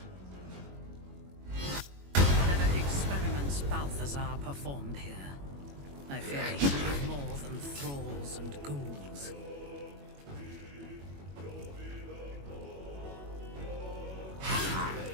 Whatever experiments Balthazar performed here, I fear he was more than thralls and ghouls.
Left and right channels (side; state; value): left; late; 21 ms